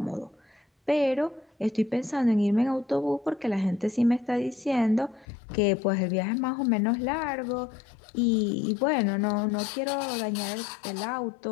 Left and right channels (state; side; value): drops out; right; at 5.2 s